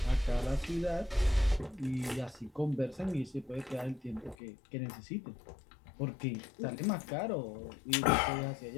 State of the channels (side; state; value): right; drops out; at 4.4 s